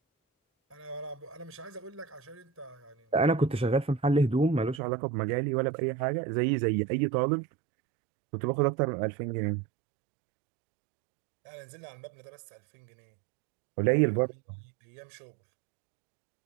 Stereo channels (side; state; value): left; drops out; at 4.8 s